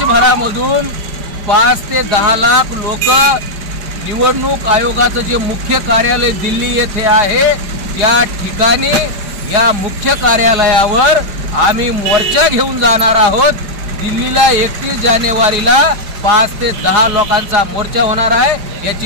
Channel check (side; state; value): left; late; 5.0 ms